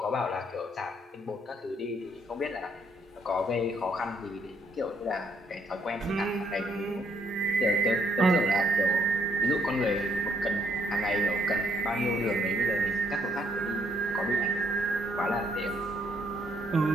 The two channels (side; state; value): both; normal; correlation 0.70